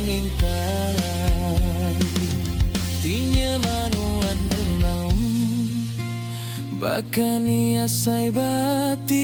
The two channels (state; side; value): identical; both; correlation 1.00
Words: intan. Tinya manuan renang, bahkan ia sai